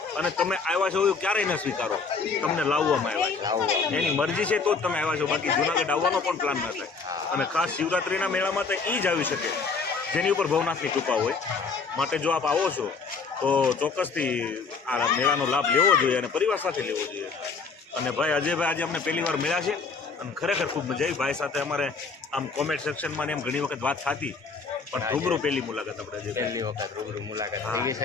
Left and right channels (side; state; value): right; quieter; 4.8 dB